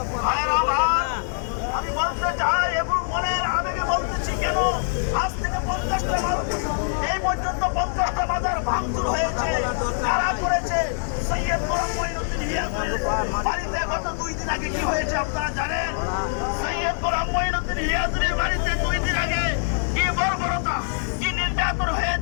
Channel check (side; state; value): right; silent; digital silence